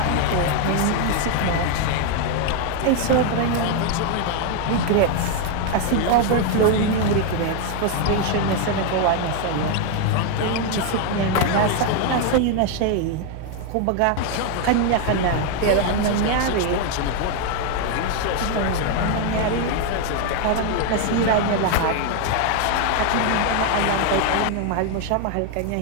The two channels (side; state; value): both; different; correlation 0.01